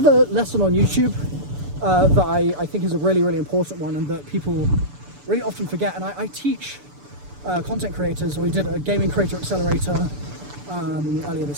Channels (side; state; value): left; late; 6.9 ms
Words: lesson on YouTube that I think is a really, really important one, and that people really often forget, and I teach content creators. We did a gaming creator accelerator earlier